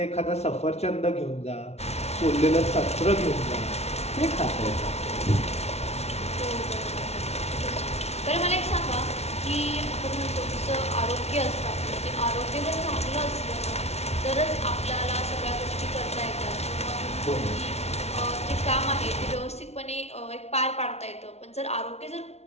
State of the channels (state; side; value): late; right; 0.31 ms